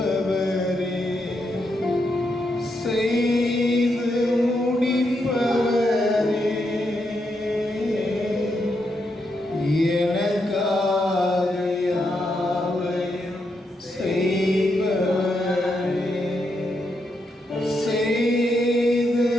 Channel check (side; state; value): both; normal; correlation 0.82